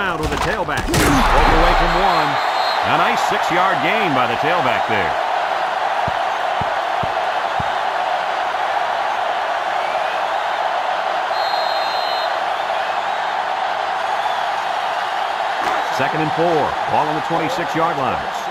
with the tailback. Broke away from one. A nice 6-yard gain by the tailback there. Second and 4. Ball on the 26-yard line.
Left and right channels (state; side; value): identical; both; correlation 1.00